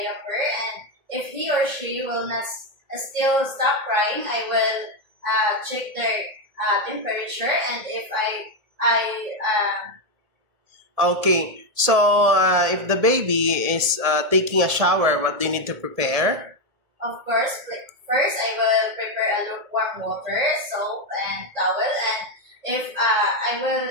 and if he or she will not still stop crying, I will check their temperature, and if Okay. So if the baby is taking a shower, what do you need to prepare? of course, first I will prepare a lukewarm water, soap, and towel, and if I will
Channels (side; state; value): left; late; 1.7 ms